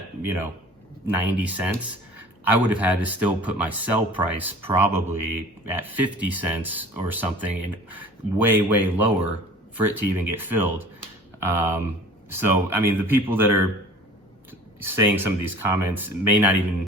you know, 90 cents, I would have had to still put my sell price probably at 50 cents or something, and way lower for it to even get filled. So I mean, the people that are saying some of these comments may not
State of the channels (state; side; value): normal; both; correlation 0.44